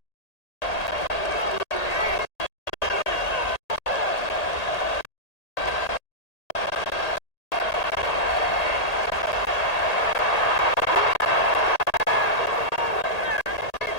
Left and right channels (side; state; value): right; late; 1.8 ms